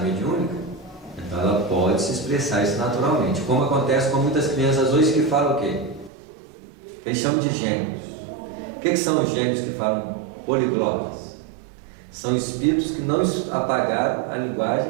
mediúnica, então ela pode se expressar isso naturalmente. Como acontece com muitas crianças hoje que falam o quê? Eles chamam de gênios. O que são os gênios que falam poliglotas? São espíritos que não apagaram a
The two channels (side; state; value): left; drops out; at 6.1 s